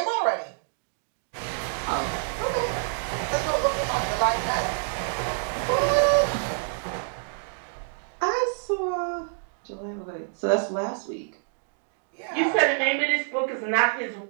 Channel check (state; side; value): silent; left; digital silence